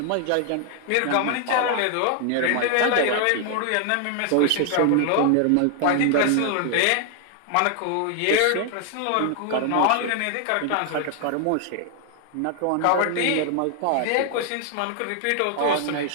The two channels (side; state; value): both; different; correlation 0.00